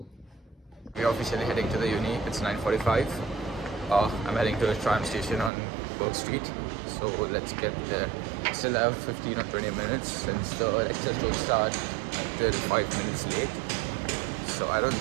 We're officially heading to the uni. It's 9:45. I'm heading to the tram station on Burke Street. So let's get there. Still have 15 or 20 minutes since the lectures don't start until 5 minutes late. So I don't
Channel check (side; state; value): left; drops out; at 5.5 s